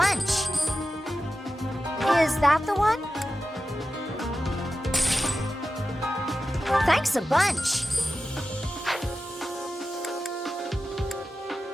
Is that the one? Thanks a bunch.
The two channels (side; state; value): both; normal; correlation 0.92